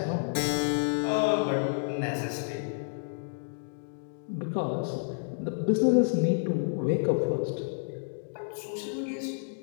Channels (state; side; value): silent; right; digital silence